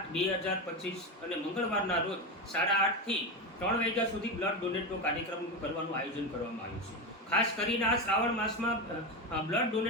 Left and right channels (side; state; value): both; normal; correlation 0.16